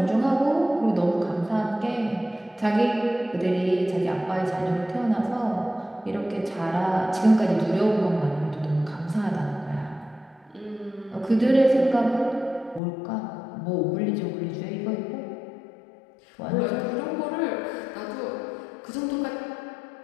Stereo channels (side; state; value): right; drops out; at 12.8 s